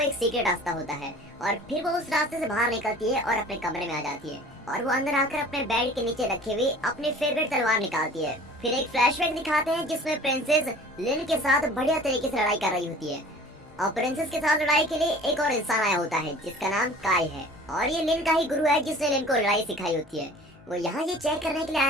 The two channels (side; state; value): both; normal; correlation 0.46